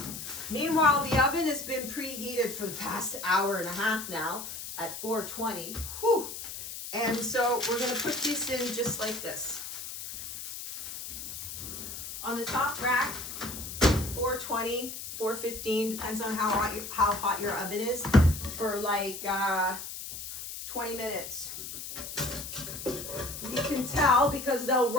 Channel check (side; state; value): left; noise; hiss, 8 dB below the sound